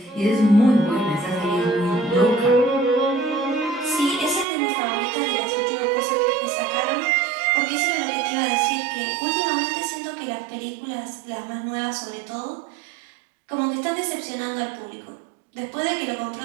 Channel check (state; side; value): drops out; left; at 4.5 s